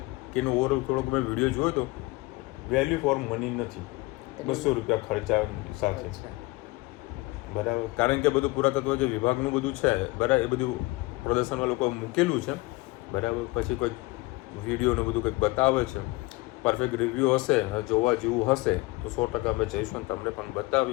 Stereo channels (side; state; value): right; quieter; 22.2 dB